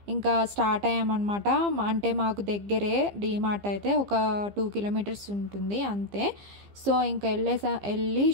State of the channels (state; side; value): late; left; 15 ms